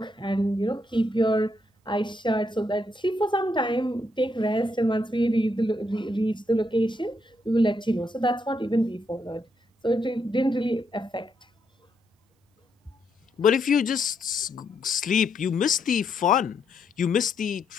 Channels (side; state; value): both; normal; correlation 0.77